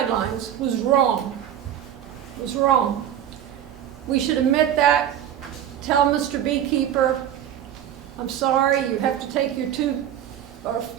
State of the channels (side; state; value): left; quieter; 10.4 dB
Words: was wrong. Was wrong. We should admit that. Tell Mr. Beekeeper, I'm sorry, you have to take your 2, or